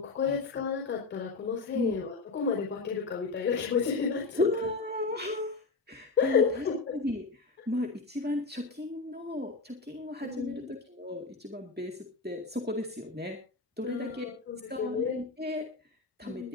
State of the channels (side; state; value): right; quieter; 4.0 dB